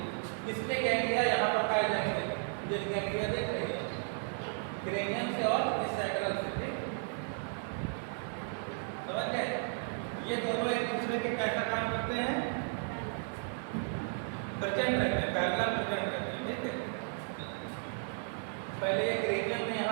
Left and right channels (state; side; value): silent; left; 55 dB below the other